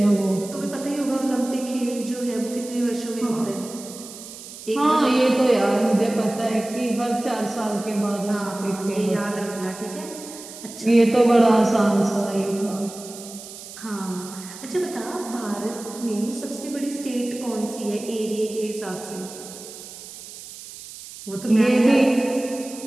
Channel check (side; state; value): right; noise; hiss, 14 dB below the sound